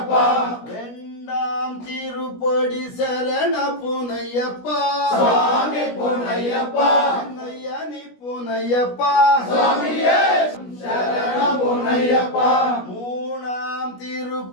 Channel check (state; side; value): late; right; 17 ms